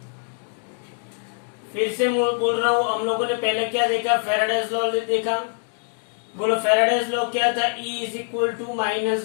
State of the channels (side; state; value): right; silent; 55 dB below the other